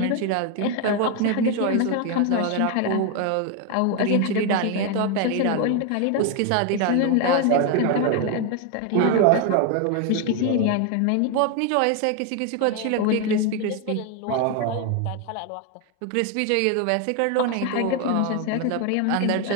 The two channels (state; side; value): different; both; correlation 0.01